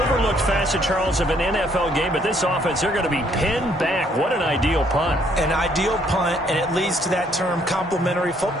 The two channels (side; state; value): both; normal; correlation 0.66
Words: overlooked facet, Charles, of an NFL game. But this offense, they're going to be pinned back. What an ideal punt. An ideal punt, and it leads to that term complementary